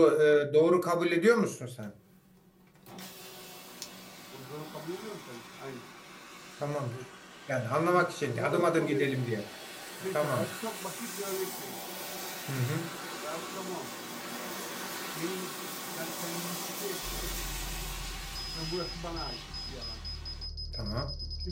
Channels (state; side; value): identical; both; correlation 1.00